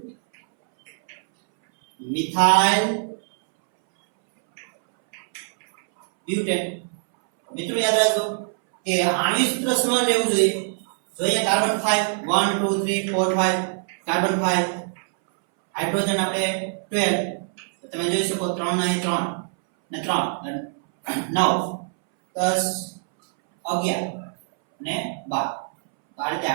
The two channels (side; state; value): left; silent; 63 dB below the other